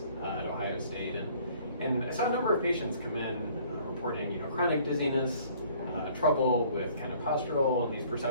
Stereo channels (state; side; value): inverted; both; correlation -0.56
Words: at Ohio State, and I saw a number of patients come in reporting chronic dizziness, trouble with kind of postural and these